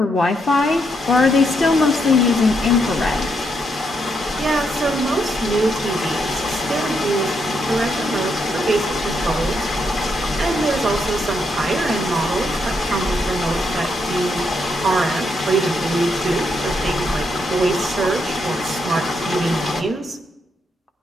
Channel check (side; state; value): both; normal; correlation 0.78